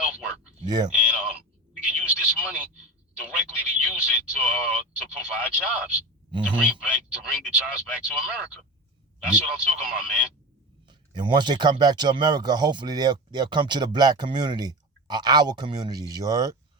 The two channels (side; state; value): both; normal; correlation 0.27